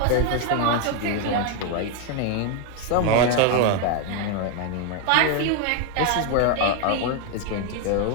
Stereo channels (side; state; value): both; different; correlation 0.01